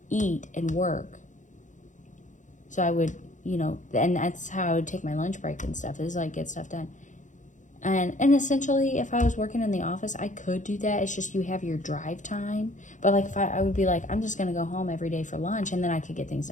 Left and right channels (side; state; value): right; late; 0.36 ms